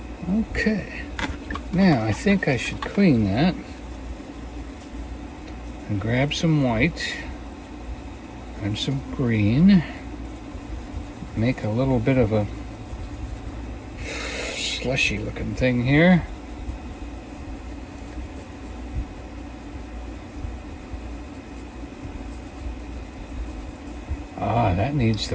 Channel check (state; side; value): identical; both; correlation 1.00